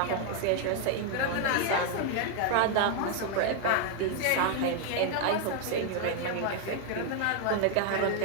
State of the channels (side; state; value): both; different; correlation 0.00